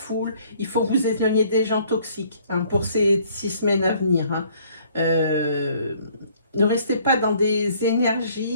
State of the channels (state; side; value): inverted; both; correlation -0.60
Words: il faut vous éloigner des gens toxiques hein, pour ces 6 semaines à venir. Hein. Ne restez pas dans des